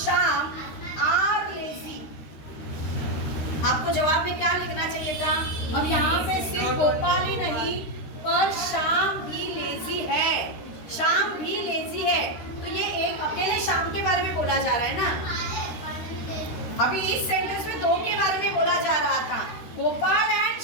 are lazy. आपको जवाब में क्या लिखना चाहिए था, अब यहाँ पे सिर्फ गोपाल ही नहीं पर श्याम भी लेजी है, श्याम भी लेजी है। तो ये एक अकेले श्याम के बारे में बोला जा रहा है ना, अभी इस सेंटेंस में दो के बारे में बोला जा रहा था, Gopal and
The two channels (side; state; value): right; late; 13 ms